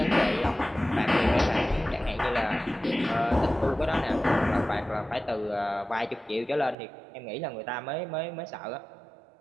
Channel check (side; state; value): left; drops out; at 6.8 s